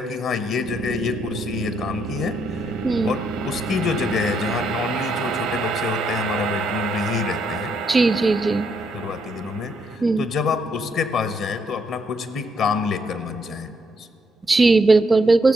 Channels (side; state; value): both; normal; correlation 0.74